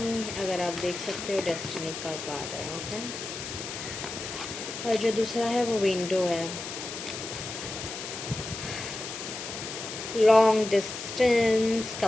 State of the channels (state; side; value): noise; left; hiss, 8 dB below the sound